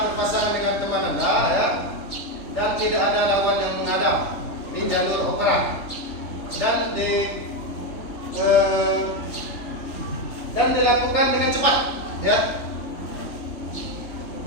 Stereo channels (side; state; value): right; late; 3.3 ms